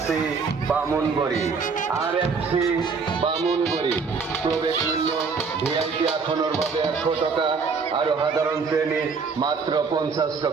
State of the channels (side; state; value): left; quieter; 5.1 dB